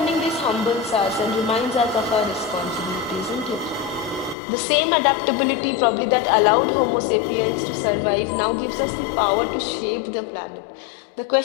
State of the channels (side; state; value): right; drops out; at 4.4 s